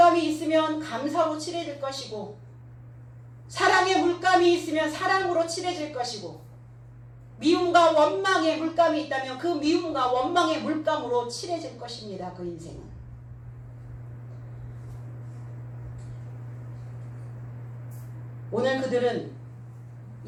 있으면 감사로 칠해질 것이고, 사랑의 물감이 있으면 사랑으로 칠해질 것이고, 미움과 원망의 물감이 있다면 그 미움과 원망의 물감으로 칠해질 것입니다. 그 인생은. 오늘 그들은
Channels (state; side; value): identical; both; correlation 1.00